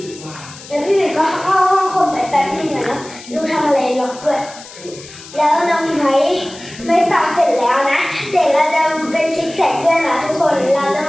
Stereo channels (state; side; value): noise; left; hiss, 17 dB below the sound